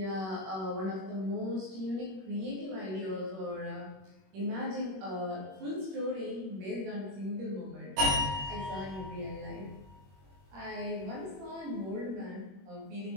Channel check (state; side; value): late; left; 21 ms